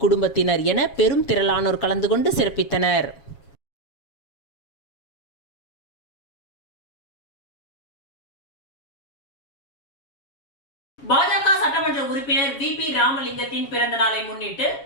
குடும்பத்தினர் என பெரும் திரளானோர் கலந்து கொண்டு சிறப்பித்தனர். பாஜக சட்டமன்ற உறுப்பினர் VP ராமலிங்கத்தின் பிறந்த நாளை முன்னிட்டு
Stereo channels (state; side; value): late; right; 7.3 ms